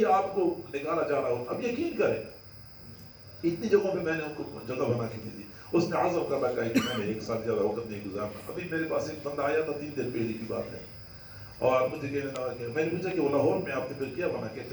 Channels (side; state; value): both; identical; correlation 1.00